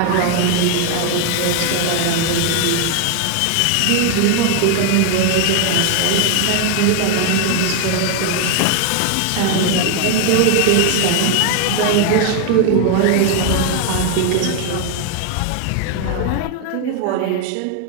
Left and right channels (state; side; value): different; both; correlation 0.01